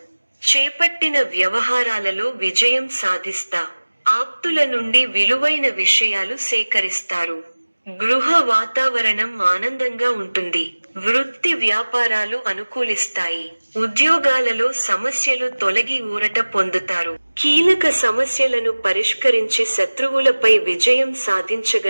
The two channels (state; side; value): inverted; both; correlation -1.00